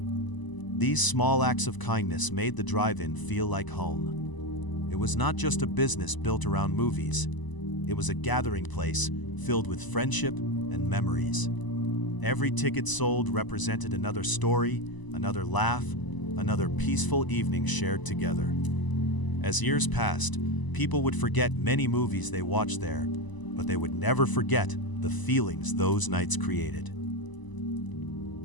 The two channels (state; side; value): late; right; 1.0 ms